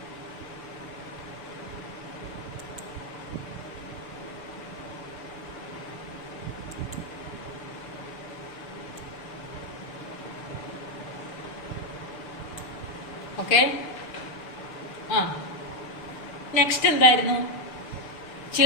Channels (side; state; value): right; late; 6.9 ms